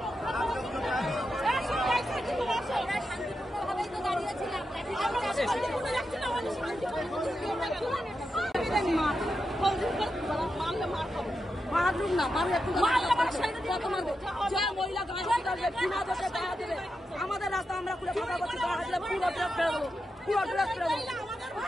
মারলুম না, মারলে এখন যে মহিলা গায়ে দেবে বিনা দোষে গায়ে দেবে আমাদের রাস্তা আমরা খুলে কথা বলছি, গায়ে দিলে পুরো ড্রেস ফেলে দেবো, পুরো ড্রেস ফেলে দেবো।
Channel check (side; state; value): both; normal; correlation 0.88